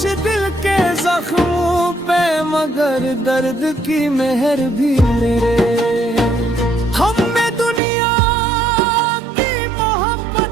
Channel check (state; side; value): drops out; left; at 7.8 s